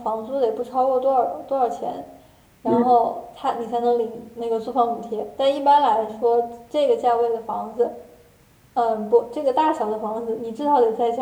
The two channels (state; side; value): identical; both; correlation 1.00